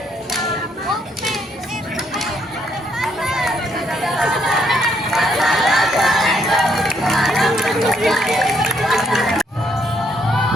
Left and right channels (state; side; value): normal; both; correlation 0.72